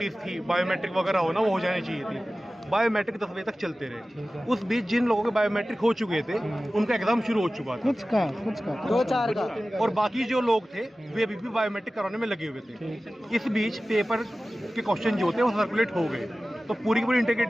थी, बायोमेट्रिक वगैरह होना, वो हो जानी चाहिए थी। बायोमेट्रिक 10 बजे तक चलते रहे। उस बीच जिन लोगों के बायोमेट्रिक हो चुके थे उनका एग्ज़ाम शुरू हो चुका था, कुछ का 2-4 का, और बाकी जो लोग थे वे अभी भी बायोमेट्रिक कराने में लगे हुए थे। इस बीच पेपर के क्वेश्चन जो थे वो सर्कुलेट हो गए, तो पूरी की पूरी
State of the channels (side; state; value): both; normal; correlation 0.96